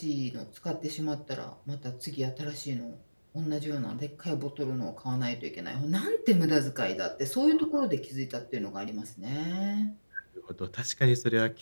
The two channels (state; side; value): inverted; both; correlation -1.00